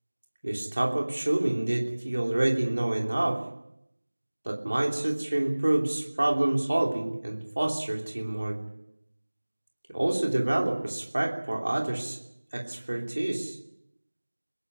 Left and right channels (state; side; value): inverted; both; correlation -1.00